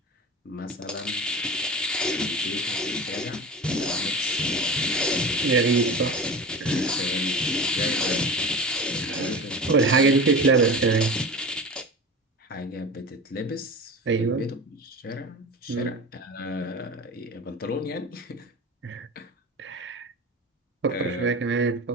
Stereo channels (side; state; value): both; normal; correlation 0.31